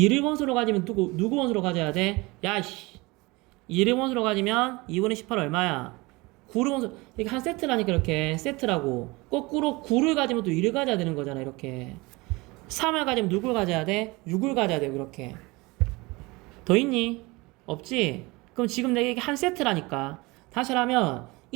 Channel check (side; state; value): left; quieter; 23.7 dB